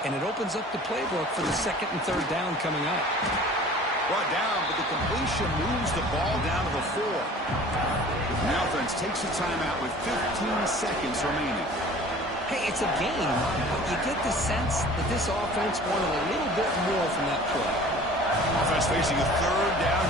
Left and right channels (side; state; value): both; normal; correlation 0.46